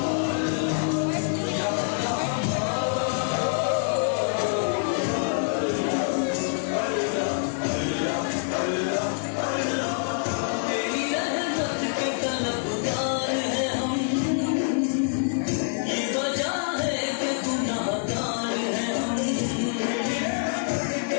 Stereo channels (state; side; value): silent; right; digital silence